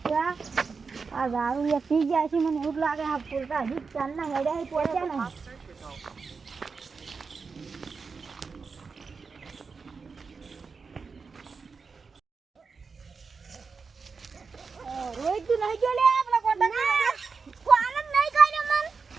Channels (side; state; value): left; quieter; 5.0 dB